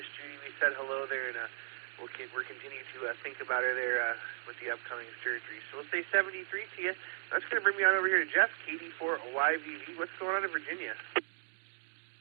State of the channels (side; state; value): left; silent; digital silence